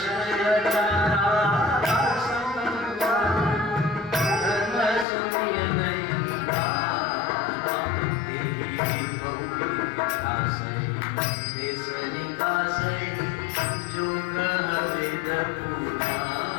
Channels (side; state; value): right; drops out; at 5.1 s